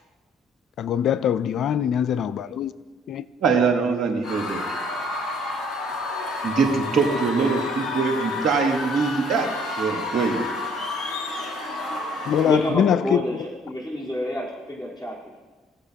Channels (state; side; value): normal; both; correlation 0.58